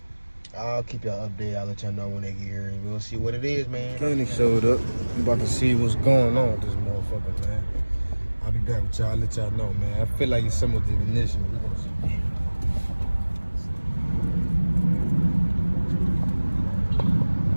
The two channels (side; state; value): both; inverted; correlation -1.00